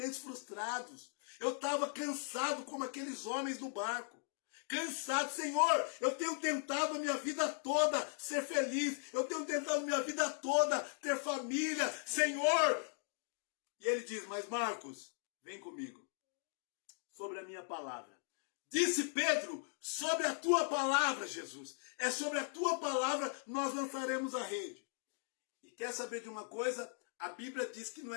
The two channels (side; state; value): right; silent; 52 dB below the other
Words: frustrados. Eu estava cansado como aqueles homens do barco. Cansado, Senhor, eu tenho tentado a minha vida toda ser feliz. Eu tenho tentado a minha vida toda ter família, Senhor. E ele diz: mas Marcos, vem comigo, sobre a minha palavra. Disse Pedro: sobre a tua palavra, Jesus. É sobre a tua palavra nós lançaremos a rede. E quer saber de uma coisa? A Bíblia diz que não